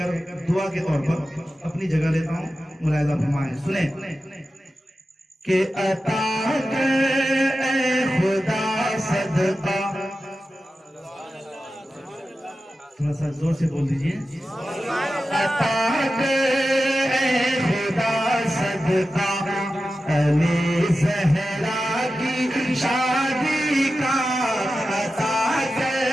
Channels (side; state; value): both; normal; correlation 0.93